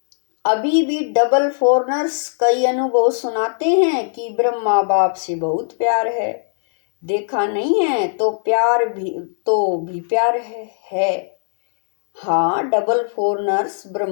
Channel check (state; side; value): silent; right; digital silence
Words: अभी भी डबल फॉरनर्स कई अनुभव सुनाते हैं कि ब्रह्मा बाप से बहुत प्यार है। देखा नहीं है तो प्यार भी प्यार है। हाँ, डबल फॉरनर्स